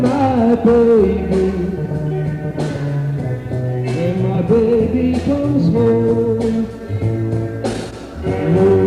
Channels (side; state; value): both; identical; correlation 1.00